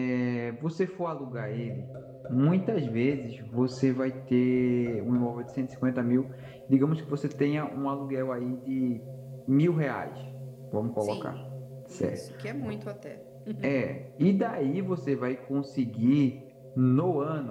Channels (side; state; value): both; identical; correlation 1.00